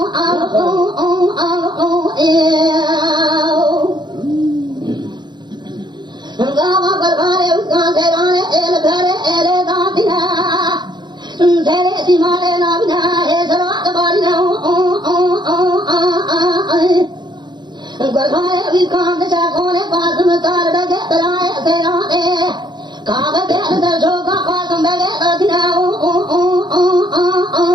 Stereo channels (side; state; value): left; late; 0.21 ms